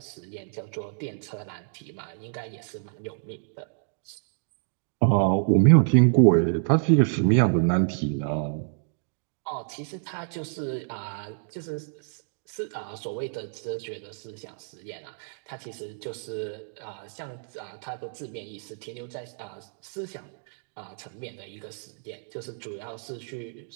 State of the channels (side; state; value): left; silent; digital silence